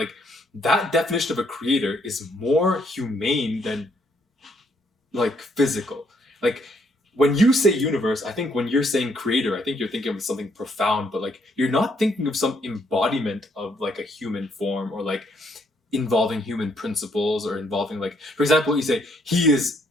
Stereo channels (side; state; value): both; normal; correlation 0.70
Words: that definition of a creator is more humane than like physical. Like, when you say universe, I think when you're saying creator, I think you're thinking of something profound, but like you're not thinking of some embodiment of like a human form, or like involving human principles, or involving, like, for example, you say he is,